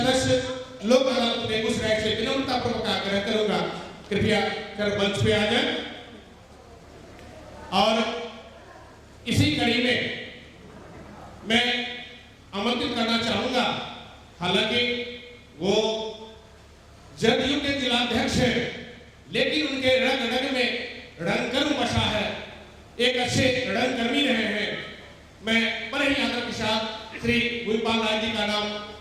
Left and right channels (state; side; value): identical; both; correlation 1.00